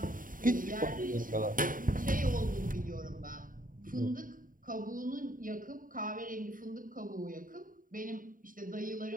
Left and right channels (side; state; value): left; late; 0.40 ms